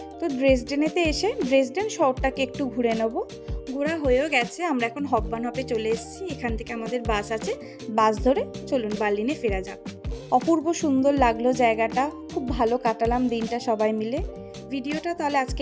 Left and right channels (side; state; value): both; identical; correlation 1.00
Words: তো ড্রেসডেনেতে এসে ড্রেসডেন শহরটাকে একটু ঘুরে নেব। ঘোরা হয়েও গেছে, আমরা এখন হপবানহপে চলে এসেছি। এখান থেকে আমাদের বাস আছে, বাস ধরে চলুন বার্লিনে ফেরা যাক। অপূর্ব সুন্দর লাগলো জায়গাটা, খুব ভালো কাটালাম দিনটা সবাই মিলে। ভিডিওটা তাহলে আজকে